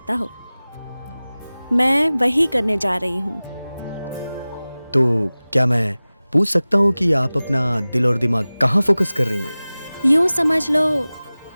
हो। मैं वही करने जा रही हूँ। तो क्या मैं पूछ सकता हूँ कि आप अपना दिल और दिमाग कहाँ फोकस कर रही हैं? यूँ समझ लो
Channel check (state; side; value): inverted; both; correlation -0.98